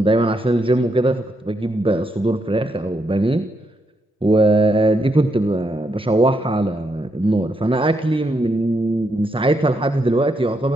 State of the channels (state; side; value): normal; both; correlation 0.79